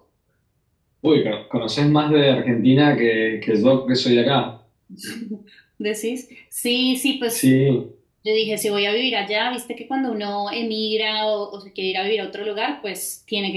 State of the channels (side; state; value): both; identical; correlation 1.00